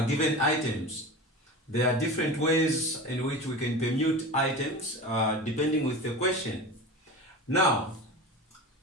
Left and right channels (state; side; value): normal; both; correlation 0.31